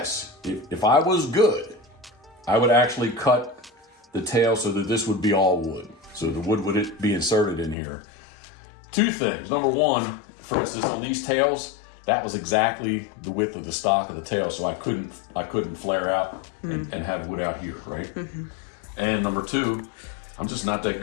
if I was good, I would actually cut the tail so that this would be all wood. So the wood would be inserted in here. Two things. Number one, for instance, on these tails, that was exactly the width of the stock of the tail, so I couldn't flare out and have wood out here, right? Mm-hmm. And number two, I'm just not that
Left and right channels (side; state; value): right; drops out; at 7.8 s